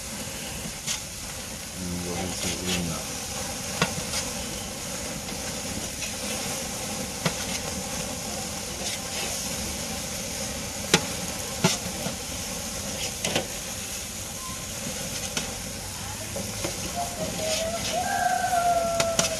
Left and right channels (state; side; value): identical; both; correlation 1.00